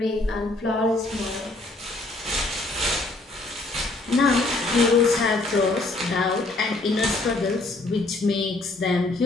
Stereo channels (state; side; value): quieter; right; 3.0 dB